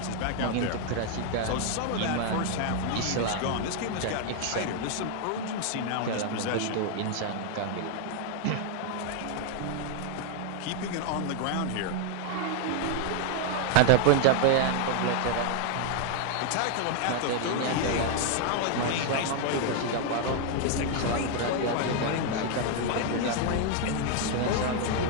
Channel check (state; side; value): different; both; correlation 0.00